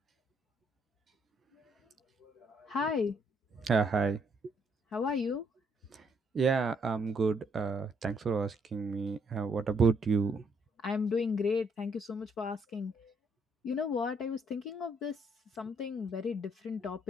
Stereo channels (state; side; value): normal; both; correlation 0.70